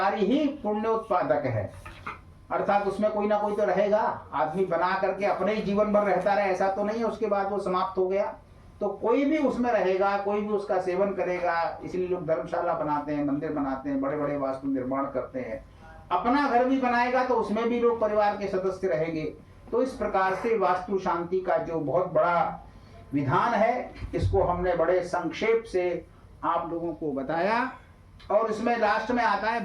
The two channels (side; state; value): both; identical; correlation 1.00